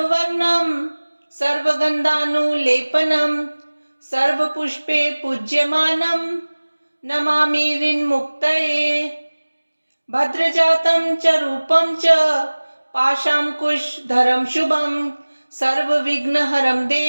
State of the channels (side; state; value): both; inverted; correlation -1.00